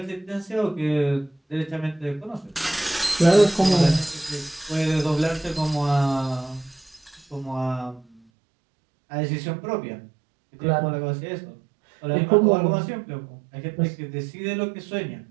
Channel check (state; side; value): drops out; left; at 8.2 s